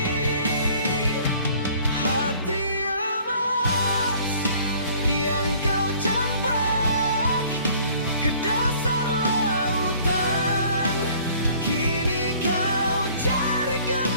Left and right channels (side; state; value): both; inverted; correlation -0.54